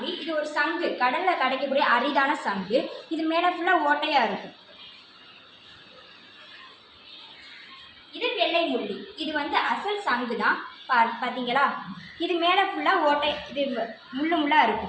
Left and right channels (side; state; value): both; identical; correlation 1.00